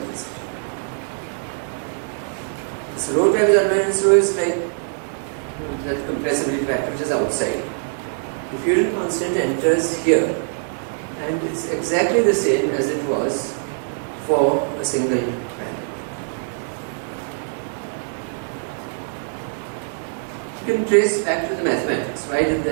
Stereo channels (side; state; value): left; silent; 64 dB below the other